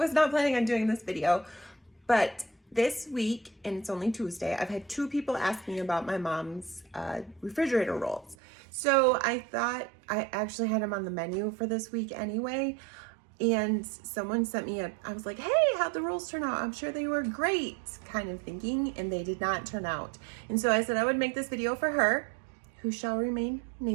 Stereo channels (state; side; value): drops out; left; at 8.3 s